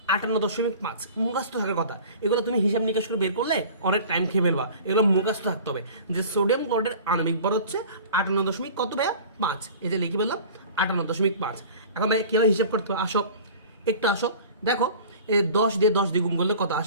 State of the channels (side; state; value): both; inverted; correlation -0.42